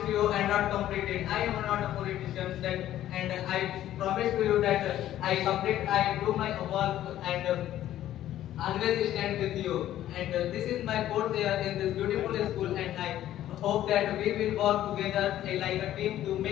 to you and not complete it. I am not a politician, and I promise to you that I do my work and always stand with you. And this is my 4th year in this beautiful school, and I hope that we will work together like a team to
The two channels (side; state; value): right; quieter; 12.7 dB